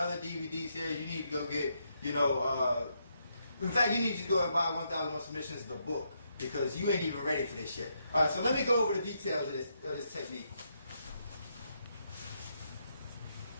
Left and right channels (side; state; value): both; inverted; correlation -0.79